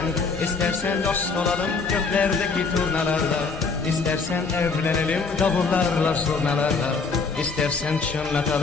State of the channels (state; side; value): quieter; right; 4.5 dB